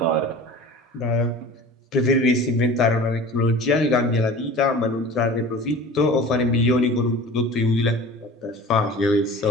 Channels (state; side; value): normal; both; correlation 0.39